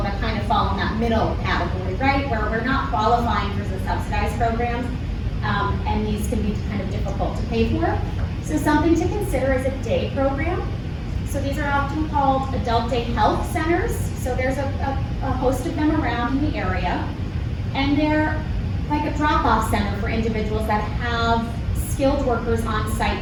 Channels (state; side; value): identical; both; correlation 1.00